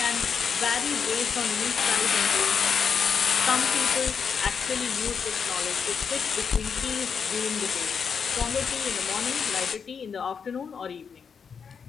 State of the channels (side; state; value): right; quieter; 6.4 dB